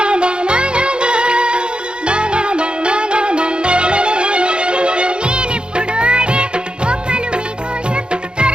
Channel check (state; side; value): late; left; 0.052 ms